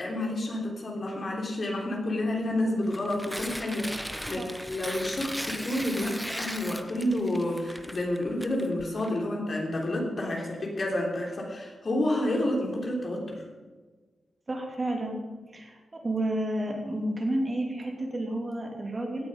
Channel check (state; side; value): normal; both; correlation 0.88